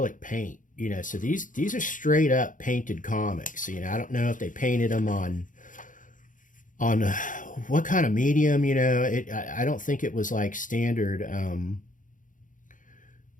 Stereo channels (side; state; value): right; late; 0.38 ms